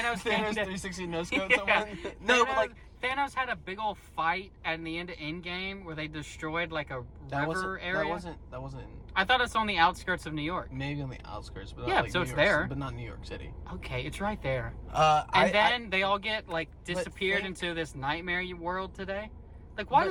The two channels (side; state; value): both; identical; correlation 1.00